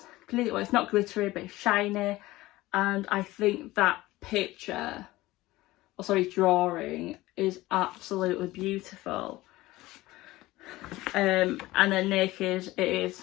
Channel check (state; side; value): quieter; right; 18.3 dB